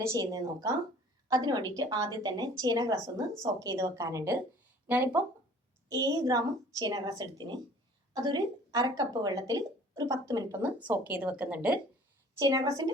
ചെയ്യുന്നത് നോക്കാം. അതിന് വേണ്ടിയിട്ട് ആദ്യം തന്നെ ചേന ഗ്രാസ് ഒന്ന് സോക്ക് ചെയ്ത് വെക്കാനുണ്ട്. ഞാനിപ്പോൾ 7 ഗ്രാം ചേന ഗ്രാസ് എടുത്തിന് അതൊരു അരക്കപ്പ് വെള്ളത്തിൽ ഒരു 10 മിനിറ്റ് ഒന്ന് സോക്ക് ചെയ്ത് വെക്കുന്നുണ്ട്. ചേന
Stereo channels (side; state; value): both; normal; correlation 0.50